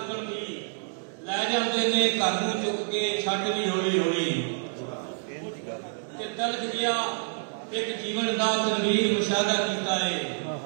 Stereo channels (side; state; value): left; silent; digital silence